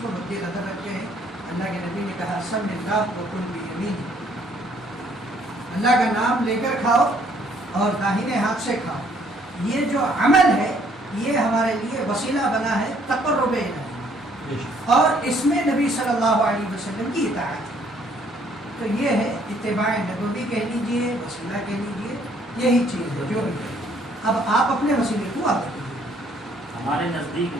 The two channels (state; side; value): normal; both; correlation 0.64